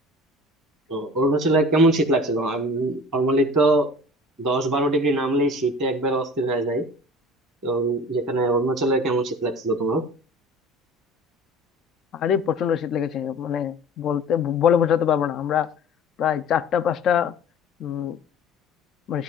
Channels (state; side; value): normal; both; correlation 0.43